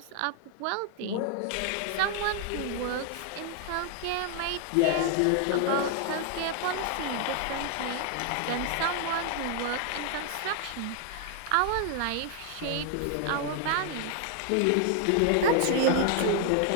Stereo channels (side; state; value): both; different; correlation 0.00